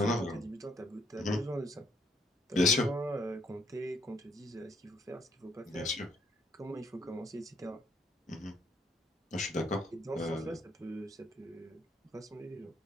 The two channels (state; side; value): normal; both; correlation 0.69